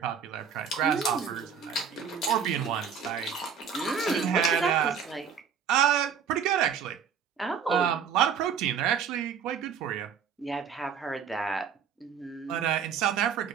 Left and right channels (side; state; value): left; quieter; 7.1 dB